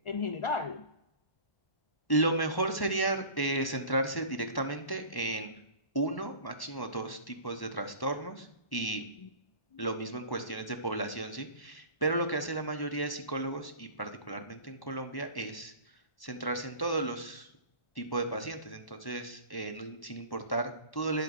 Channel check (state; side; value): late; right; 1.1 ms